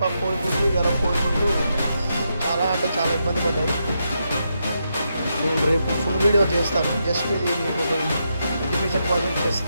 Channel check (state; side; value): inverted; both; correlation -0.83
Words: కోడి ముందు ఇవాళ కోడి ముందు చాలా అంటే చాలా ఇబ్బంది పడ్డాయి. నేను రేపు ఫుల్ వీడియో చేస్తాను. జస్ట్ ఇది మీకు ఒక ఇన్ఫర్మేషన్ కోసం